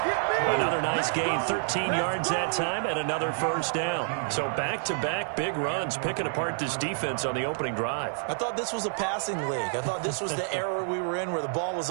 Another nice gain, 13 yards that time, and another first down. So back-to-back big runs, picking apart this defense on the opening drive. I thought this was a passing league. I thought this was the era we were in where the ball was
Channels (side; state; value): left; silent; 56 dB below the other